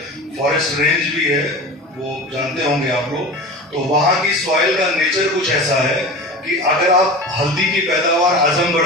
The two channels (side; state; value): both; normal; correlation 0.32